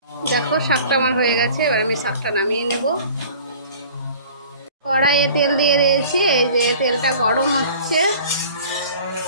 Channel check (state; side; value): inverted; both; correlation -0.46